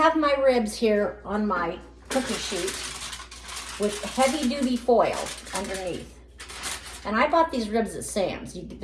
my ribs here on my cookie sheet with heavy duty foil underneath. And I bought these ribs at Sam's.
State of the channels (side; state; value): both; identical; correlation 1.00